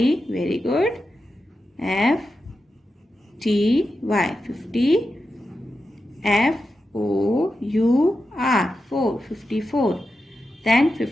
very good. FTY, 50. FOUR, 4, 54. Then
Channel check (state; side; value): normal; both; correlation 0.90